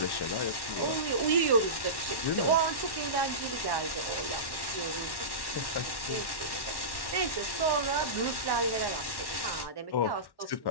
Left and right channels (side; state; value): right; late; 1.1 ms